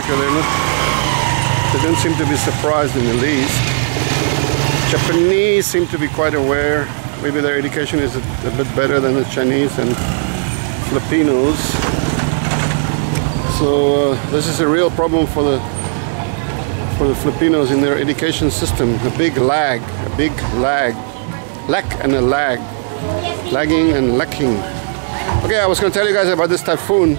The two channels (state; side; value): silent; left; digital silence